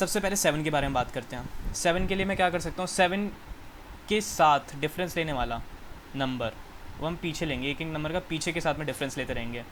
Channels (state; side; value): identical; both; correlation 1.00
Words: पहले 7 के बारे में बात करते हैं। 7 के लिए मैं क्या कर सकता हूँ, 7 के साथ डिफरेंस लेने वाला नंबर वो हम पीछे लेंगे, एक एक नंबर का पीछे के साथ में डिफरेंस लेते रहेंगे।